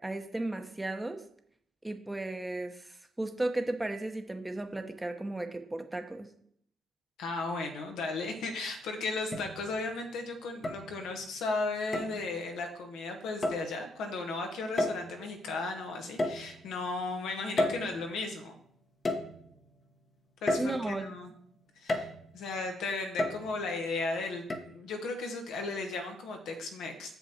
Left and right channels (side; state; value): both; normal; correlation 0.76